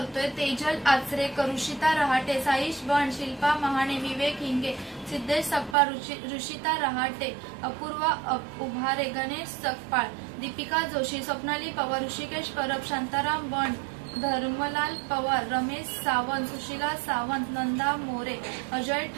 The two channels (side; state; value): left; drops out; at 5.8 s